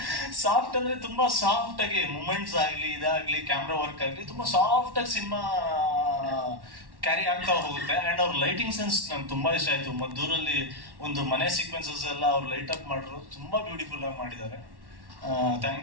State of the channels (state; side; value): late; left; 1.1 ms